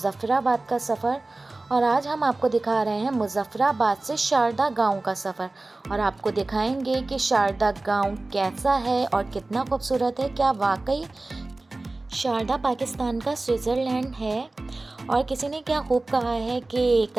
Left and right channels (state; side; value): quieter; left; 3.1 dB